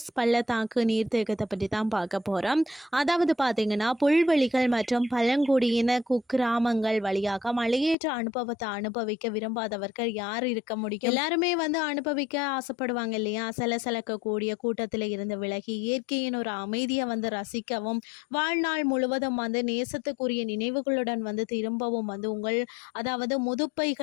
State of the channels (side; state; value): right; drops out; at 8.0 s